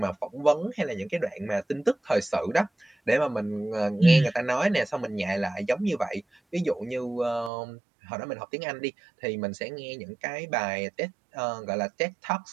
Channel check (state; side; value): drops out; left; at 7.5 s